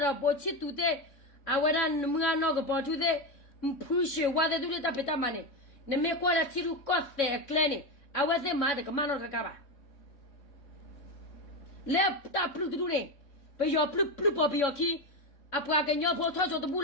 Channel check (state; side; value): late; right; 3.6 ms